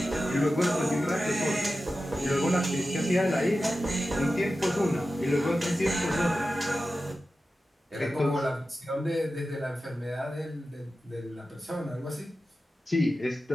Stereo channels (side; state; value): both; normal; correlation 0.93